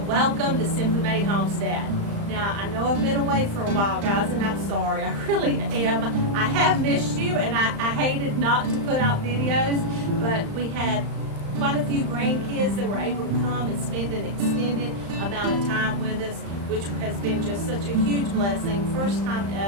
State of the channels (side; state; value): left; late; 35 ms